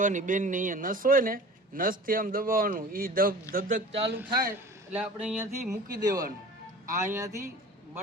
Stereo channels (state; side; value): normal; both; correlation 0.41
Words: બેનની અહીંયા નસ હોય ને, નસથી આમ દબાવવાનું, એ ધબધક ચાલુ થાય એટલે આપણે અહીંયાથી મૂકી દેવાનું. આ અહીંયાથી